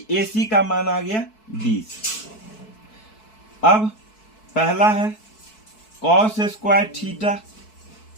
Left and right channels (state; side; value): late; right; 4.6 ms